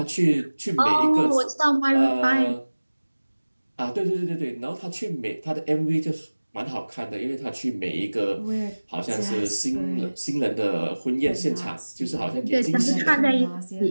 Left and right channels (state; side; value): inverted; both; correlation -1.00